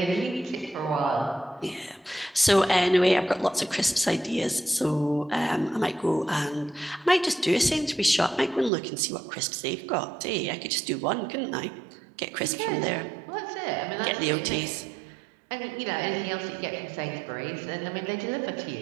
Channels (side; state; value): left; drops out; at 8.7 s